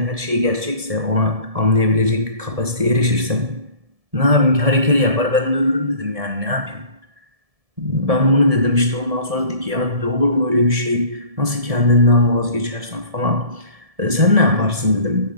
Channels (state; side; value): late; left; 1.7 ms